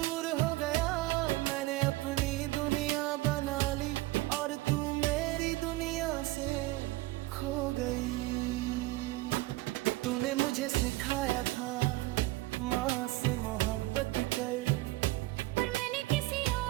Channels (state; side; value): quieter; left; 19.2 dB